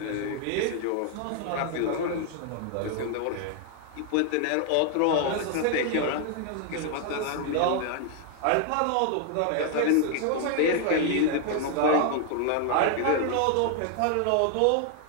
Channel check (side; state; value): both; different; correlation 0.00